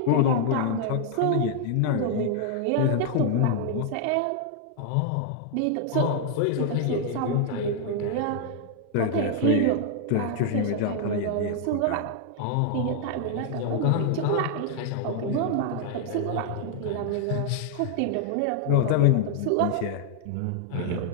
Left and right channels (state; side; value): different; both; correlation 0.00